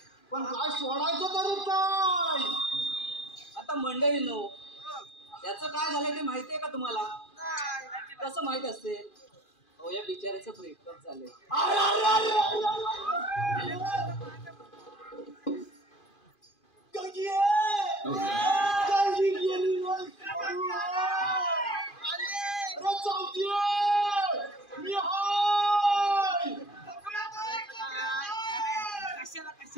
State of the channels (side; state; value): right; late; 2.4 ms